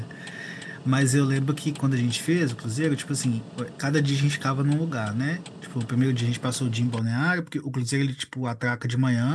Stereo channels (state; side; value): identical; both; correlation 1.00